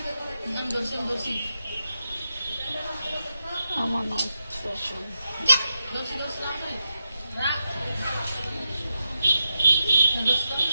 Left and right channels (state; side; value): inverted; both; correlation -0.88